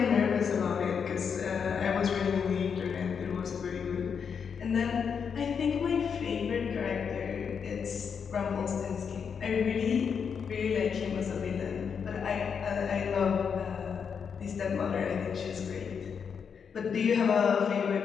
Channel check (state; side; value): quieter; right; 6.6 dB